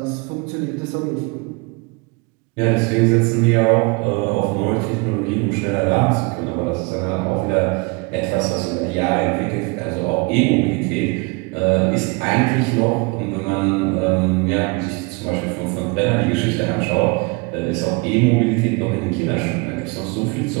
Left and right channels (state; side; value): quieter; left; 29.1 dB